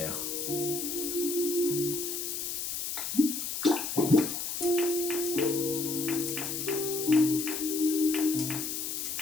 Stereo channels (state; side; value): noise; left; hiss, 3 dB below the sound